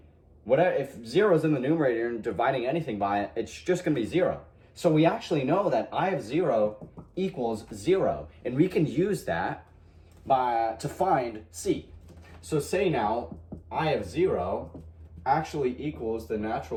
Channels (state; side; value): identical; both; correlation 1.00